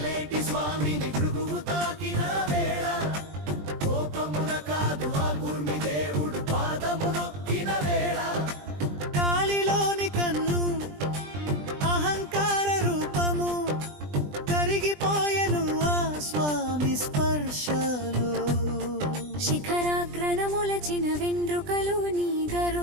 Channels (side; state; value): left; late; 20 ms